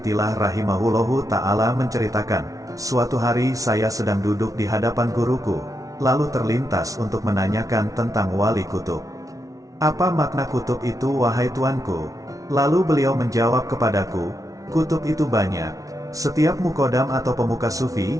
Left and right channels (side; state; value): left; late; 0.17 ms